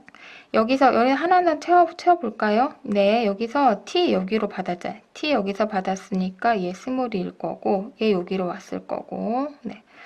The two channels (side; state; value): both; identical; correlation 1.00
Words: 여기서 여기 하나는 채워볼까요? 네, 여기서 T 여기로 받았잖아요. T 여기서 받았으니까 얘 스몰일 거고 얘 여기로 왔을 거고 네.